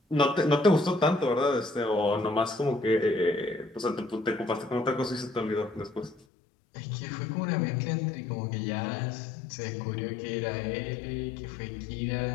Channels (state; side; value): drops out; right; at 6.2 s